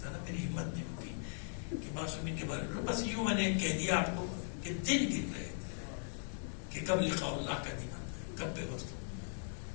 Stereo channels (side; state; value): right; silent; digital silence